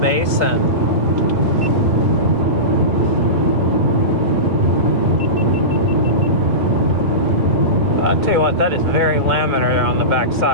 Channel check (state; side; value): late; left; 2.2 ms